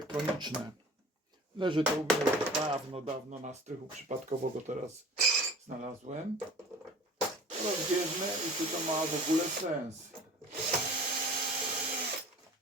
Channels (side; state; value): both; normal; correlation 0.43